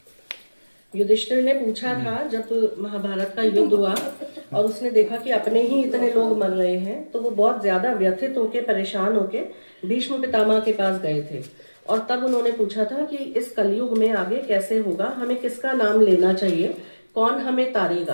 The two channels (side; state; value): both; inverted; correlation -1.00